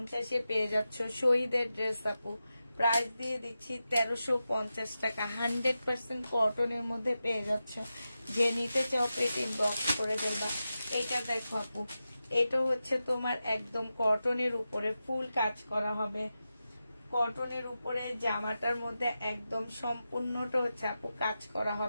পেয়ে যাচ্ছ শহীদের ড্রেস আপু। প্রাইস দিয়ে দিচ্ছি 1350 টাকা। 100% কটনের মধ্যে পেয়ে যাচ্ছ। যে নিতে চাও এটা ইনবক্স করে ফেলবা। এটা দেখো আপু, এটা হচ্ছে তোমার একদম কটনের উপরে ফুল কাজ করা হবে, কটনের উপরে জামাটার মধ্যে একদম সম্পূর্ণটা হচ্ছে আপু কাজ করা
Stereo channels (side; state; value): both; inverted; correlation -0.91